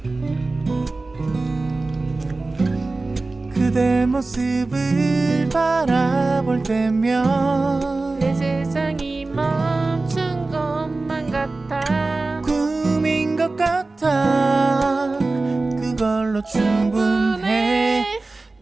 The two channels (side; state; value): left; quieter; 3.4 dB